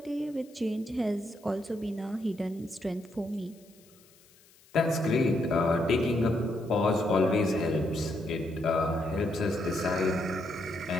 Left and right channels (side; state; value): left; noise; hiss, 28 dB below the sound